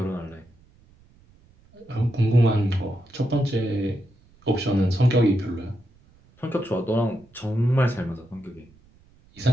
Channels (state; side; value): noise; right; rumble, 29 dB below the sound